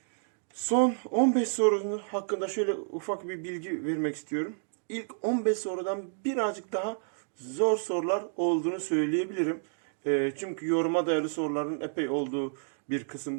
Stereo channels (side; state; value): left; silent; digital silence